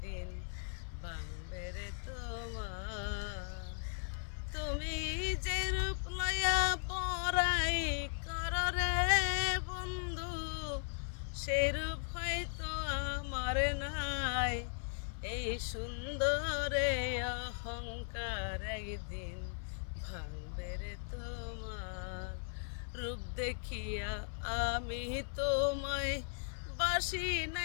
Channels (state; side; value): silent; right; 53 dB below the other